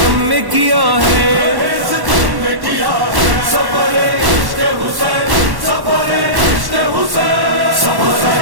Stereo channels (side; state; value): left; late; 1.1 ms